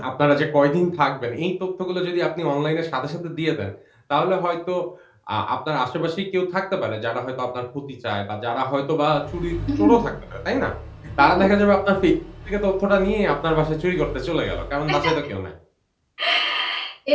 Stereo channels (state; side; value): identical; both; correlation 1.00